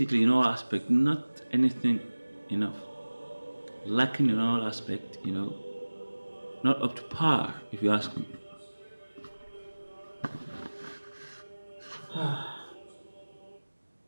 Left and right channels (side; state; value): both; inverted; correlation -1.00